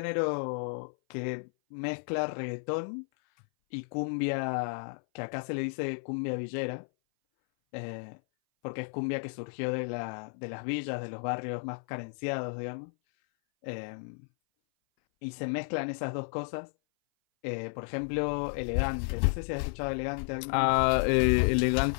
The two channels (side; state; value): right; silent; 56 dB below the other